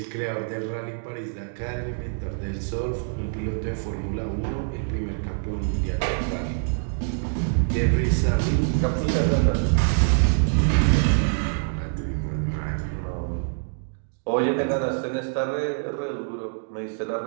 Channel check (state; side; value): silent; left; digital silence